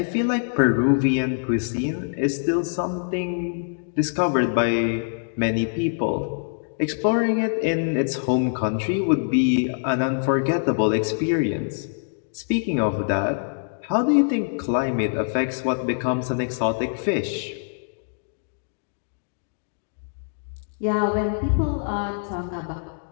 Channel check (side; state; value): right; silent; digital silence